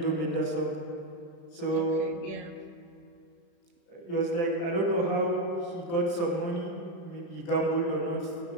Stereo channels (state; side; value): late; right; 35 ms